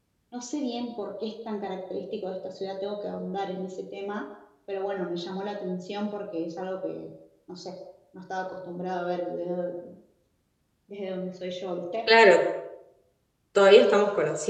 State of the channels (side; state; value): both; identical; correlation 1.00